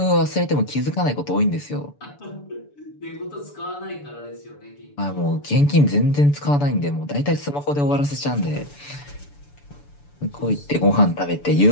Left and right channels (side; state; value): right; late; 6.9 ms